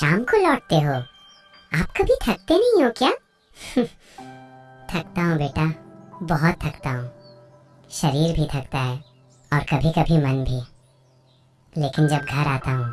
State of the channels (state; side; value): identical; both; correlation 1.00